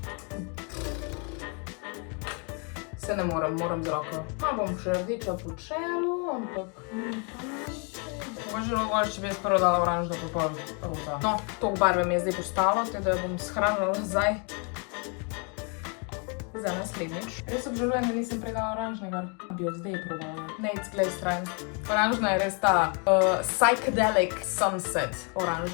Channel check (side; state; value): right; quieter; 36.4 dB